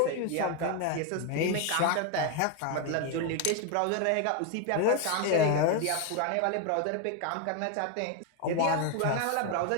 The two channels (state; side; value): different; both; correlation 0.01